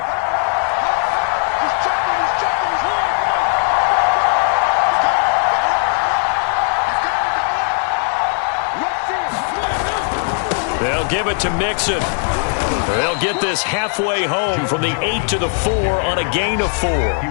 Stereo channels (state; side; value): silent; right; 59 dB below the other